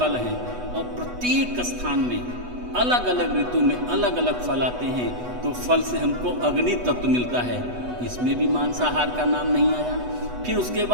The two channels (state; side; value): late; left; 8.1 ms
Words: हैं और प्रत्येक स्थान में अलग अलग ऋतु में अलग अलग फल आते हैं, तो फल से हमको अग्नि तत्व मिलता है, इसमें भी मांसाहार का नाम नहीं आया। फिर उसके